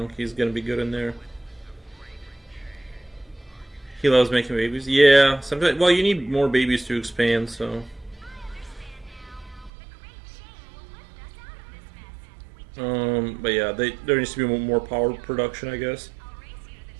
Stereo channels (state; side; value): drops out; left; at 9.7 s